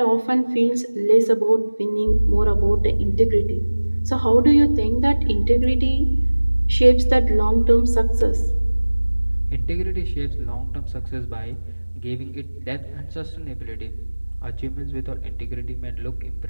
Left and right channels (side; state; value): both; inverted; correlation -1.00